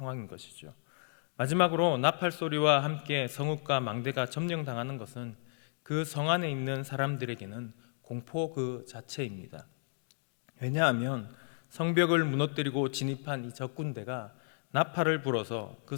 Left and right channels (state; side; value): silent; right; digital silence